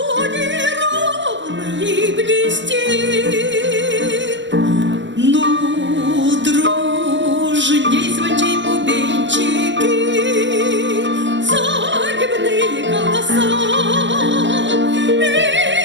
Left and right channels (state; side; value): late; left; 0.53 ms